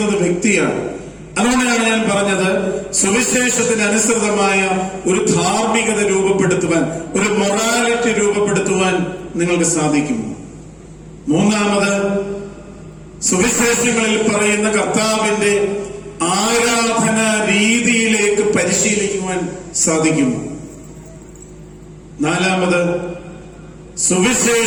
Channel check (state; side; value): identical; both; correlation 1.00